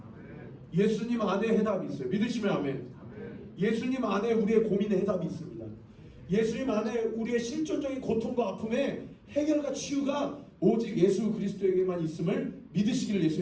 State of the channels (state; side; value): identical; both; correlation 1.00